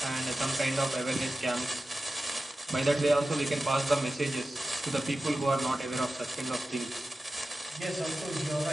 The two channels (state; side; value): normal; both; correlation 0.94